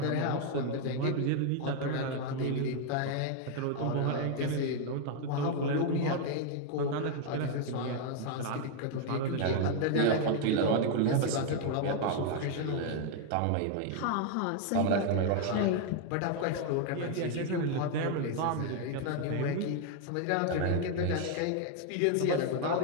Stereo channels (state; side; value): different; both; correlation 0.00